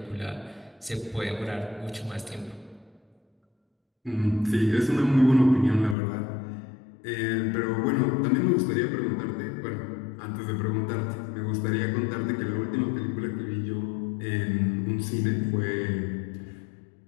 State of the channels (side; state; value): right; drops out; at 6.0 s